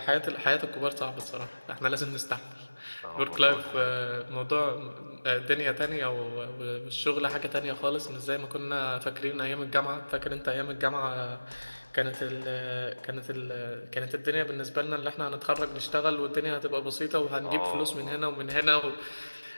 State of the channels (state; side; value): inverted; both; correlation -1.00